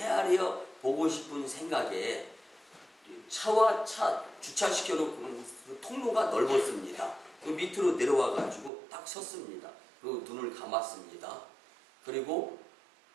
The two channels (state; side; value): drops out; left; at 8.7 s